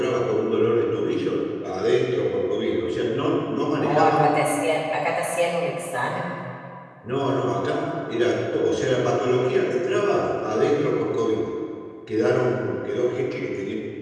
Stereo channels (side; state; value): both; identical; correlation 1.00